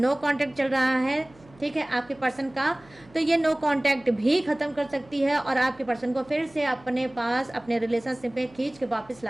कांटेक्ट चल रहा है, ठीक है, आपके पर्सन का, तो ये नो कांटेक्ट भी ख़त्म कर सकती है और आपके पर्सन को फिर से अपने पास अपने रिलेशनशिप में खींच के वापस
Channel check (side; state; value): right; noise; hum, 26 dB below the sound